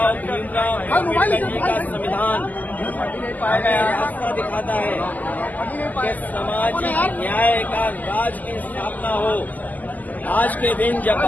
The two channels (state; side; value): late; right; 0.080 ms